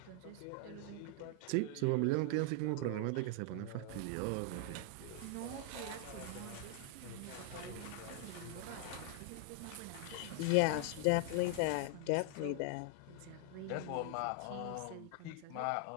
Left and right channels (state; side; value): different; both; correlation 0.00